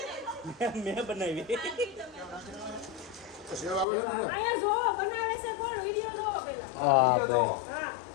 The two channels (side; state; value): right; drops out; at 3.9 s